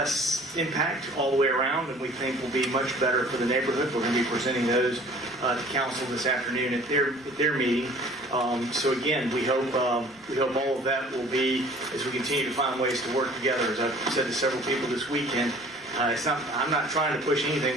impact all the way around, and we think will be much better for the neighborhood. We're going to be presenting those to council this afternoon at their meeting. So again, we hope all of that will be, as we continue to find ways to work together. As I've said to several people this weekend, I'm not trying to push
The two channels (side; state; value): both; normal; correlation 0.50